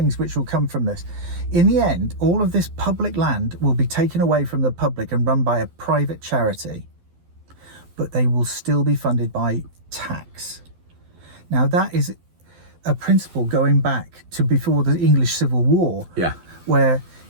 which will come from this. In the end, all of this public land will be taken away from the public and run by a private charity, but they will still be funded by tax. Now, that is a principle going back to before the English Civil War, where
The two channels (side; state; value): left; late; 12 ms